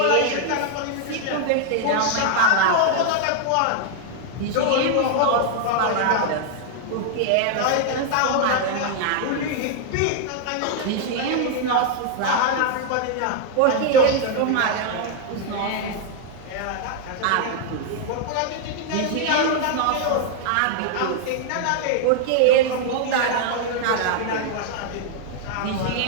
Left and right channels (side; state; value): both; different; correlation 0.00